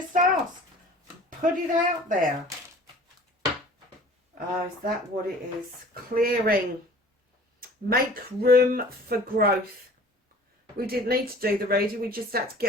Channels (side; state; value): both; normal; correlation 0.47